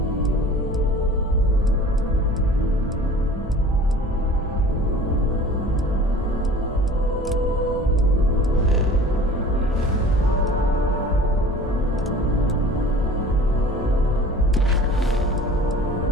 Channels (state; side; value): normal; both; correlation 0.44